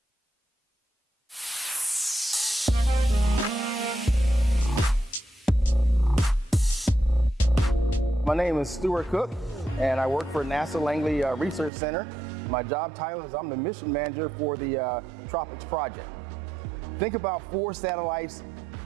My name is Stuart Cook, and I work for NASA Langley Research Center. My job title is I'm the mission manager for the TROPICS project. Think about 4 satellites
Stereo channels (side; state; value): left; drops out; at 11.7 s